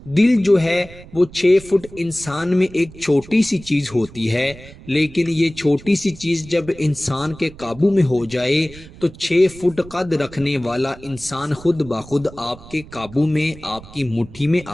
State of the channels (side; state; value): right; noise; rumble, 19 dB below the sound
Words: دل جو ہے وہ 6 فٹ انسان میں ایک چھوٹی سی چیز ہوتی ہے، لیکن یہ چھوٹی سی چیز جب انسان کے قابو میں ہو جائے تو 6 فٹ قد رکھنے والا انسان خود بخود آپ کے قابو میں، آپ کی مٹھی میں